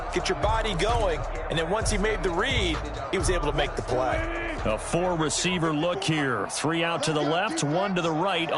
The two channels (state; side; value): identical; both; correlation 1.00